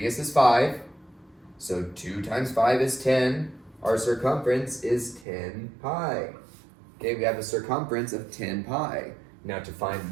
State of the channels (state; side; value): drops out; left; at 5.2 s